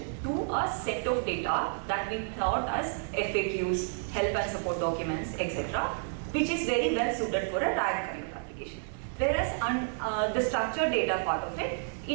to a set of data that we thought as FAQs, help and support documents, etc., which is very well suited for a RAG kind of application. Whereas the structured data part of it,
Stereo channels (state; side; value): silent; left; digital silence